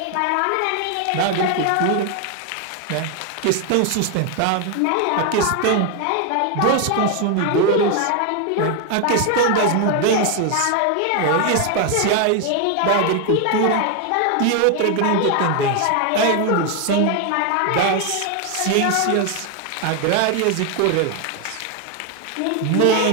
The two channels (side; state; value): both; different; correlation 0.01